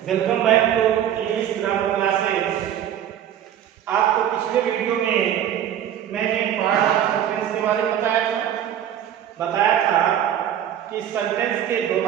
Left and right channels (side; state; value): left; quieter; 10.4 dB